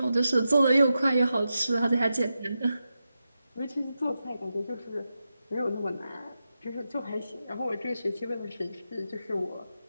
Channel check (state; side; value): inverted; both; correlation -0.89